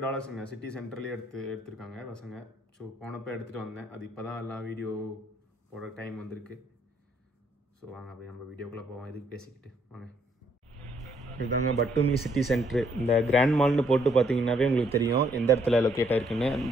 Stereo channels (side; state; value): both; normal; correlation 0.69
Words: சிட்டி சென்டர்லேயே எடுத்திருக்காங்க பசங்க. ஸோ போனப்போ எடுத்துகிட்டு வந்தேன். அது இப்போ தான் எல்லாம் வீடியோ போட டைம் வந்திருக்கு. ஸோ வாங்க அப்படியே நம்ம வீடியோக்குள்ளே போவோம். இதுக்கு பேசிக்கிட்டு வாங்க. இதுதாங்க பட்டுமி சிட்டி சென்ட்ரு. இந்த கிராண்ட் மால்னு போட்டு பார்த்தீங்கன்னாவே உங்களுக்கு தெரியும் எந்த இடத்துல லொக்கேட் ஆகிருக்குன்னு.